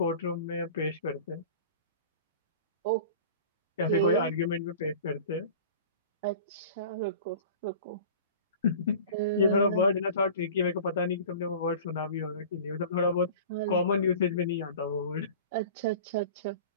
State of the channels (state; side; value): inverted; both; correlation -0.39